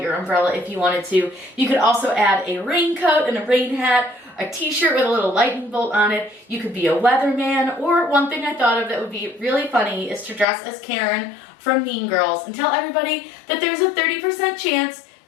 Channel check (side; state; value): right; drops out; at 10.5 s